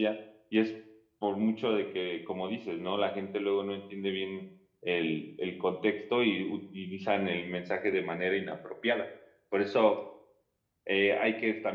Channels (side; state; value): both; identical; correlation 1.00